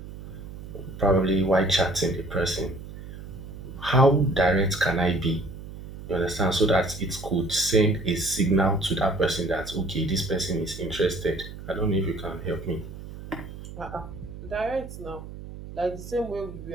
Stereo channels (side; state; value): right; noise; hum, 12 dB below the sound